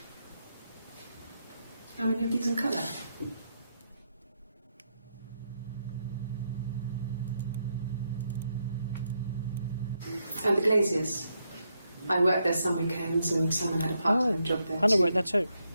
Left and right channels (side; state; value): both; inverted; correlation -0.81